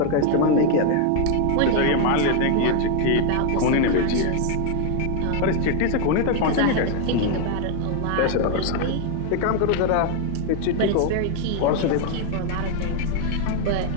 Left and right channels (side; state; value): both; different; correlation 0.01